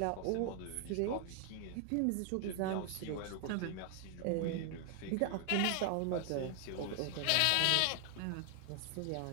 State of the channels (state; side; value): different; both; correlation 0.00